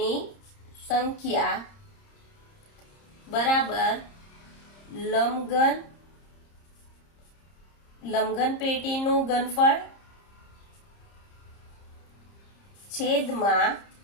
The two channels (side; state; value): right; late; 30 ms